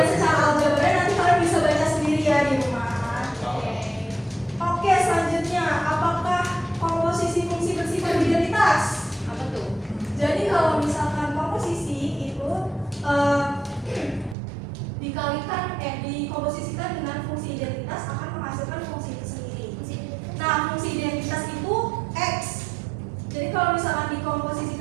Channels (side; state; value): left; drops out; at 14.4 s